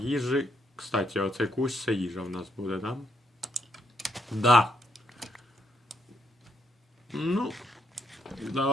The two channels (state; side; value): normal; both; correlation 0.75